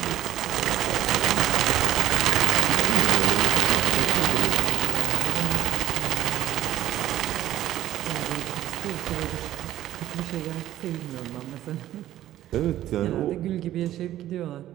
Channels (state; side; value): quieter; left; 13.2 dB